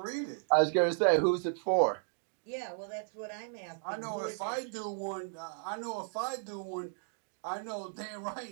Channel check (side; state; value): left; silent; digital silence